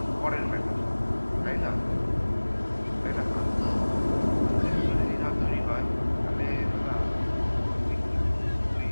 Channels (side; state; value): both; inverted; correlation -1.00